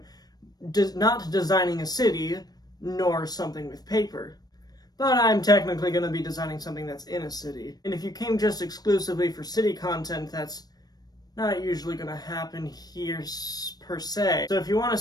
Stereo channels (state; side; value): late; right; 0.19 ms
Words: not designing a city nor something with paper, but I'm technically going to be designing something that's in a city. And if you came just exclusively for city content, that's not usually going to happen here per se. So if you want to